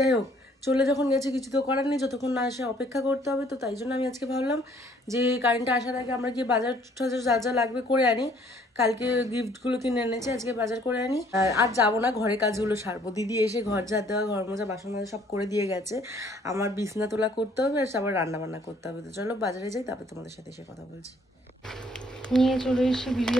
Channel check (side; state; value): both; normal; correlation 0.61